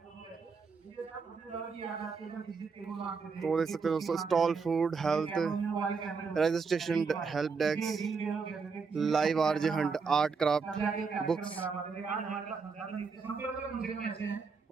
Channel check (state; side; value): quieter; left; 5.1 dB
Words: तो देख सकते हो दोस्तों stall food health registration help desk live RJ Hunt art craft books